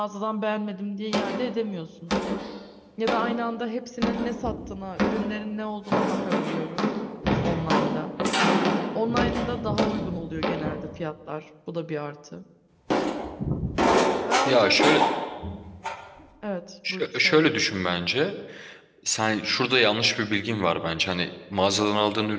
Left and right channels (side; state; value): both; identical; correlation 1.00